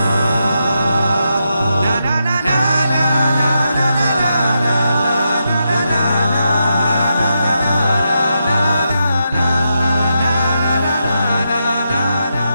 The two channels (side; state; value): both; inverted; correlation -0.84